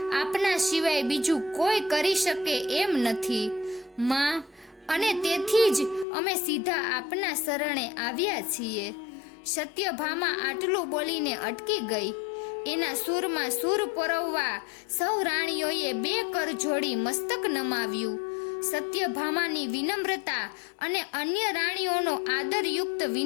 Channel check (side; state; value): right; drops out; at 6.1 s